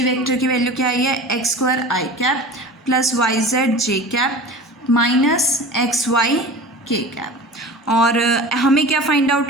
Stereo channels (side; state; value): both; normal; correlation 0.37